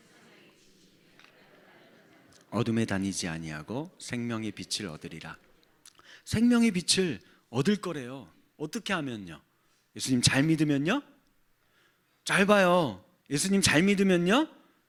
어둠에 다니지 아니하고 생명의 빛을 얻으리라. 생명의 빛을 얻을 거래요. 어떻게 하면요? 예수님 잘 믿으면요? 잘 봐요. 예수님 잘 믿으면요?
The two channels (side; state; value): both; identical; correlation 1.00